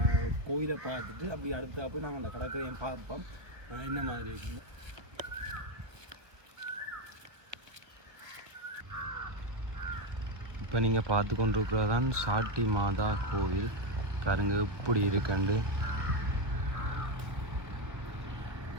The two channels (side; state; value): left; late; 1.4 ms